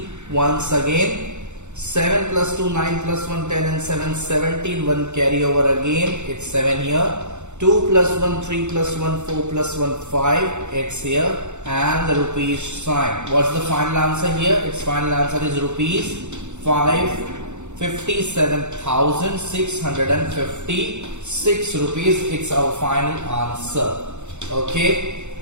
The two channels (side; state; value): left; late; 0.83 ms